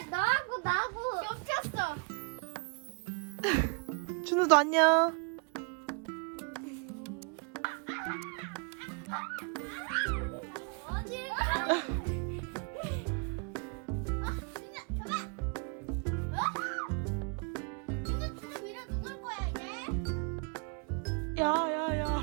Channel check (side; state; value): left; quieter; 35.9 dB